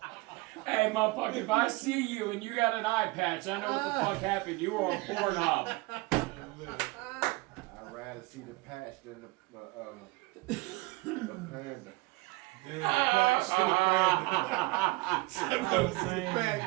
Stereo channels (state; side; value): quieter; left; 22.8 dB